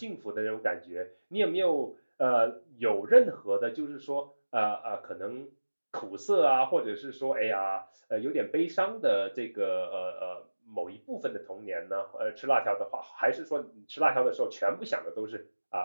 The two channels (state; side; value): inverted; both; correlation -1.00